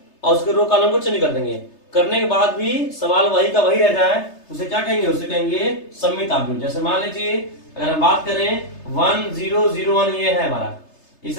और उसके रो कॉलम को चेंज कर देंगे। करने के बाद भी सवाल वही का वही रह जाए, उसे क्या कहेंगे, उसे कहेंगे सममित अवयव। जैसे मान लीजिए अगर हम बात करें 1 0 0 1 ये है हमारा,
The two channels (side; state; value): right; late; 3.3 ms